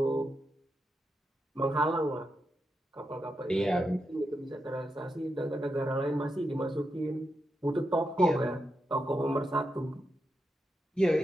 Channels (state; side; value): normal; both; correlation 0.85